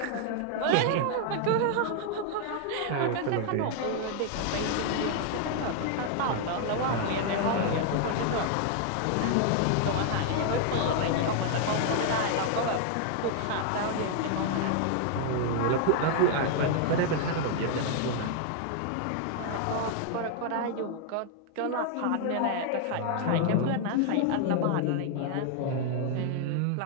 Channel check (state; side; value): different; both; correlation 0.00